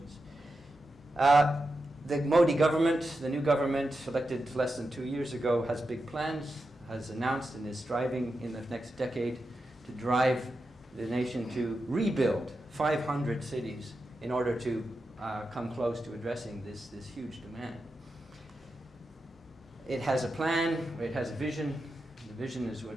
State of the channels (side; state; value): both; normal; correlation 0.89